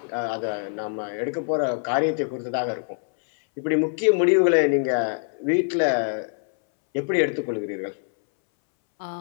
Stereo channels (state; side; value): silent; right; 63 dB below the other